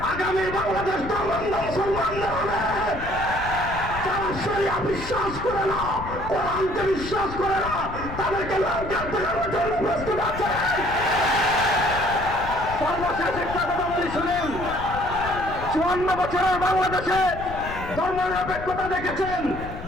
আগামী বাংলাদেশ ধর্মান্ধ মুসলমানদের হবে। যারা শরিয়া বিশ্বাস করে না, কোরআনকে বিশ্বাস করে না, তাদেরকে লঙ্কার দেখানোর জন্য প্রস্তুত আছে। সর্বশেষ একটা কথা বলি, শুনেন, 54 বছরের বাংলাদেশে ধর্মনিরপেক্ষতা দেখেছেন,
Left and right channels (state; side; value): noise; left; rumble, 10 dB below the sound